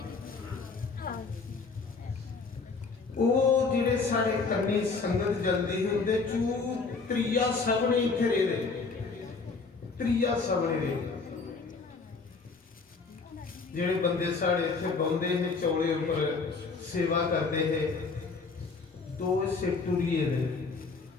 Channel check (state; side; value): quieter; right; 4.4 dB